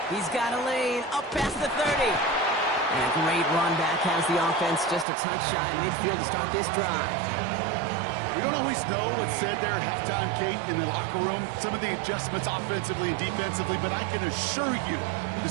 He's got a lane up past the 30. And a great run back has the offense just a touch shy of midfield to start this drive. We don't always know what's said there at halftime, Kate, in the locker room. Some of the adjustments offensively and defensively, but I can assure you the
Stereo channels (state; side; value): drops out; left; at 5.1 s